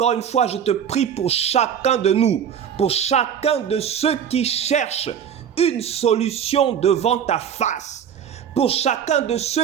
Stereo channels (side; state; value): left; quieter; 8.5 dB